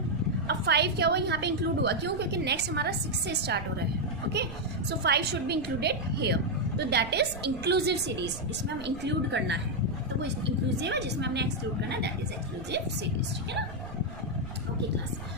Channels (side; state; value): right; noise; rumble, 12 dB below the sound